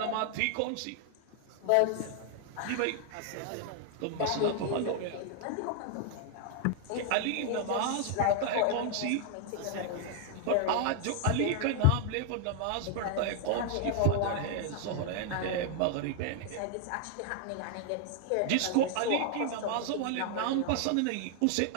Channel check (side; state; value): both; different; correlation 0.00